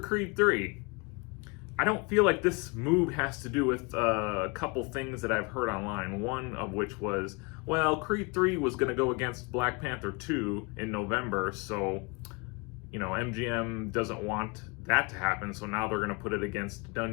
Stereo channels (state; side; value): quieter; right; 29.0 dB